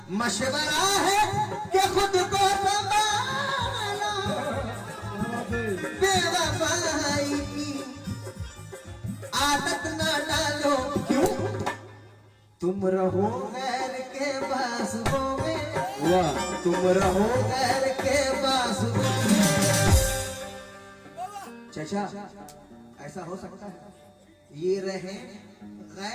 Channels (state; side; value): identical; both; correlation 1.00